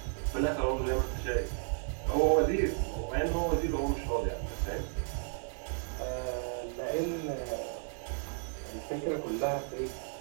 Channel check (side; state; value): left; silent; 55 dB below the other